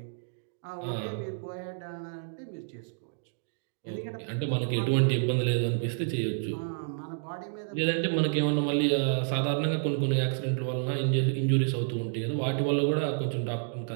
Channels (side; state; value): left; silent; digital silence